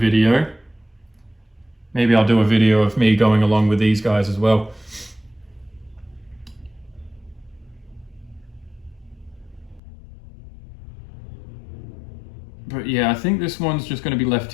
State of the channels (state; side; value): drops out; right; at 9.8 s